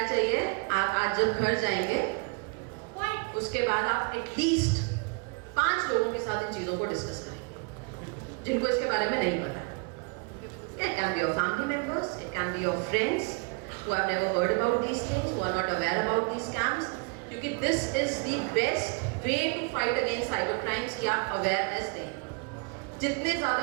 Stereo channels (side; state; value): left; quieter; 33.0 dB